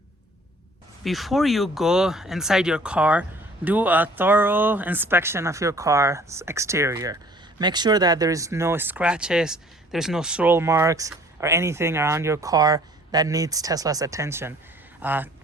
Before you go inside your car, do a thorough inspection of your car's exterior. Make sure that there is no scratches, there's no swirl marks or anything around your car that needs Tesla's attention.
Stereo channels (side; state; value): both; normal; correlation 0.54